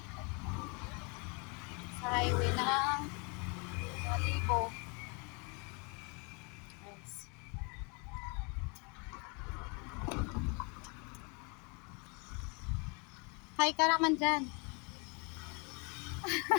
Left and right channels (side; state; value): right; quieter; 33.1 dB